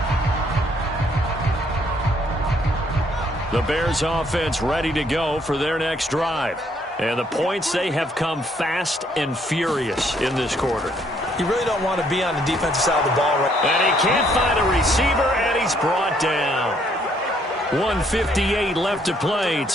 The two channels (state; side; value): normal; both; correlation 0.68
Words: The Bears offense ready to go for their next drive. And the points, they have come fast and furious in this quarter. You really don't want to be on the defensive side of the ball right. And he can't find a receiver, and he's brought down. 1:58 left to play